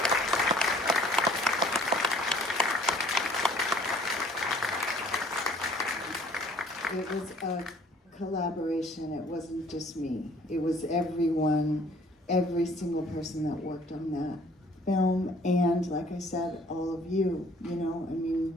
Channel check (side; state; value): both; normal; correlation 0.56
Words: It was a collaboration. It wasn't just me. It was everyone, every single person that worked on that film. And like I said, all of you,